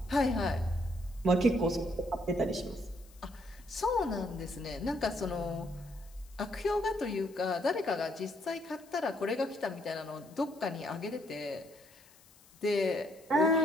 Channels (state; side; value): noise; left; hiss, 26 dB below the sound